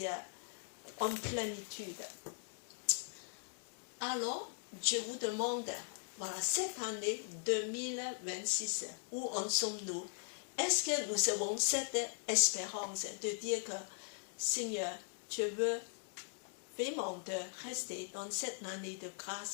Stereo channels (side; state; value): right; silent; digital silence